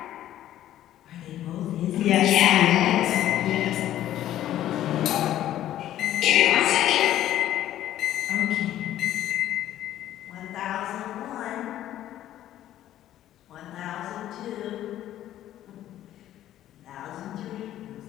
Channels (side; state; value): right; quieter; 12.6 dB